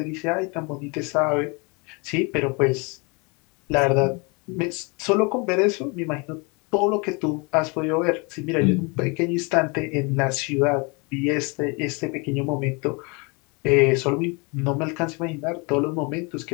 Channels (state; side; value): quieter; right; 30.4 dB